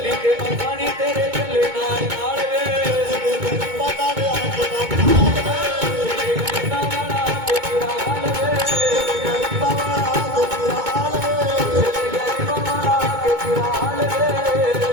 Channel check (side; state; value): left; late; 2.2 ms